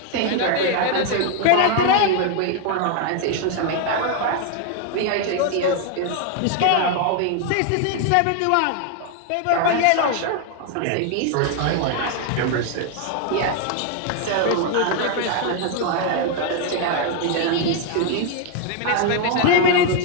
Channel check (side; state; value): both; different; correlation 0.00